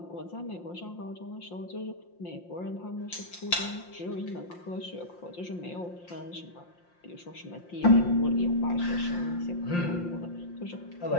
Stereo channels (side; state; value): right; late; 5.7 ms